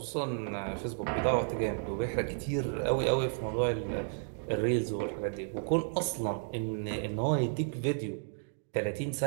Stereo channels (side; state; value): left; silent; digital silence